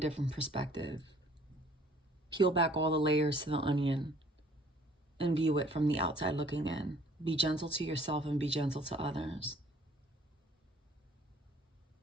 perspective. Peel back all the layers to the onion and view it from the outside looking in. Be gentle to yourself and be gentle to others.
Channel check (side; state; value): both; normal; correlation 0.56